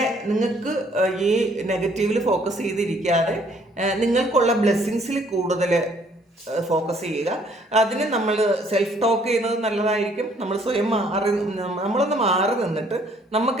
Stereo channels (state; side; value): normal; both; correlation 0.62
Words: നിങ്ങൾക്ക് ഈ നെഗറ്റീവിൽ ഫോക്കസ് ചെയ്തിരിക്കാതെ നിങ്ങൾക്കുള്ള ബ്ലെസ്സിങ്സിൽ കൂടുതൽ ഫോക്കസ് ചെയ്യുക. അതിന് നമ്മൾ സെൽഫ് ടോക്ക് ചെയ്യുന്നത് നല്ലതായിരിക്കും. നമ്മൾ സ്വയം നമ്മളൊന്ന് മാറി നിന്നിട്ട്